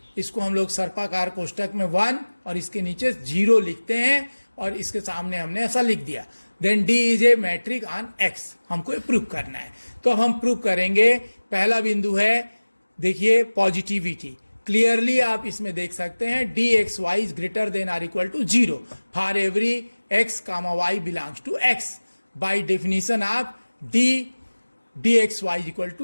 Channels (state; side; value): inverted; both; correlation -1.00